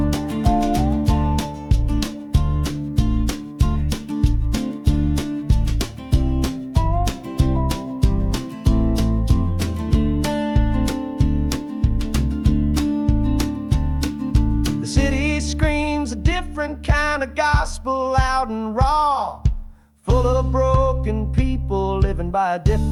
Different kind of gospel, loud and raw, full of broken people living by a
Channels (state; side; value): identical; both; correlation 1.00